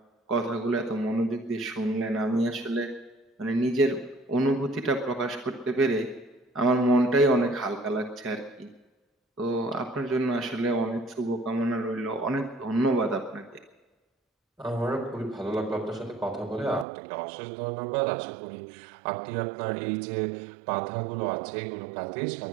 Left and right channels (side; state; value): left; drops out; at 16.9 s